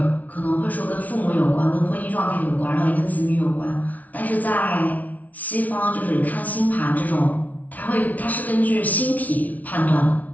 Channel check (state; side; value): late; right; 0.073 ms